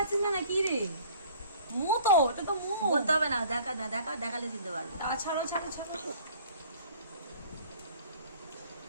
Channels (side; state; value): both; inverted; correlation -0.51